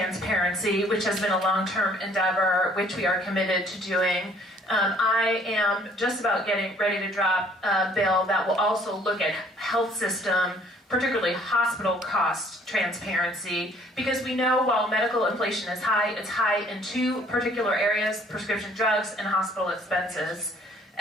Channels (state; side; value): normal; both; correlation 0.59